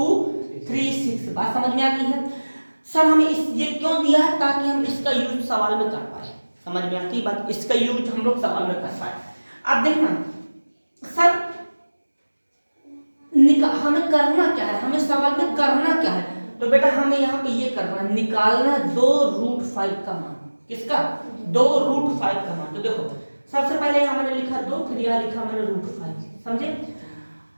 बात समझ में आ गई है? सर हमें ये क्यों दिया है? ताकि हम इसका यूज सवाल में कर पाए। समझ में आती है बात? इसका यूज हम लोग सवाल में कर पाए। अब देखना सर हमें करना क्या है, हमें सवाल में करना क्या है? तो बेटा हमें यहाँ पे ये करना है, निकालना 2√5 का मान। किसका? 2√5 का मान। तो देखो सबसे पहले यहाँ मैंने लिखा 2, फिर यहाँ लिखा मैंने √5। समझे?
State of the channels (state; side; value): inverted; both; correlation -1.00